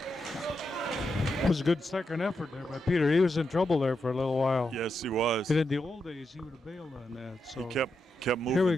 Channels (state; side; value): normal; both; correlation 0.85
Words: It was a good second effort there by Peter. He was in trouble there for a little while. Yes, he was. And in the old days, he would have bailed on that. So He kept moving Here we